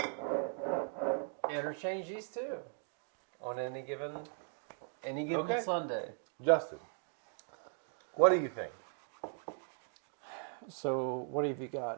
interchange these two on any given Okay. Sunday. Justin, what do you think? So what have you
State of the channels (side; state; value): left; silent; 52 dB below the other